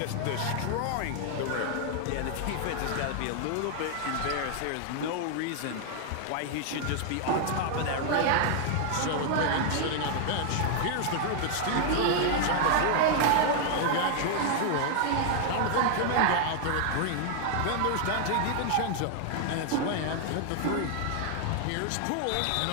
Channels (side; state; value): both; different; correlation 0.00